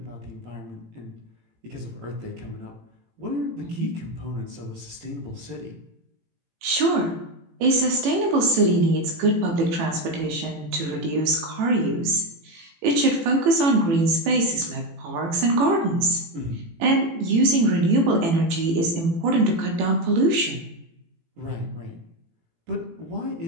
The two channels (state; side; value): late; left; 18 ms